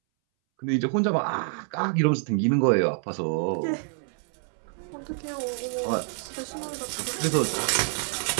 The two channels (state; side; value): silent; left; 60 dB below the other